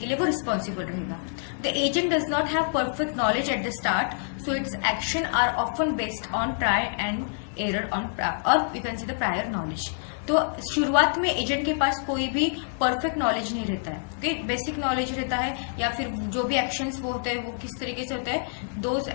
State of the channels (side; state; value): right; silent; 60 dB below the other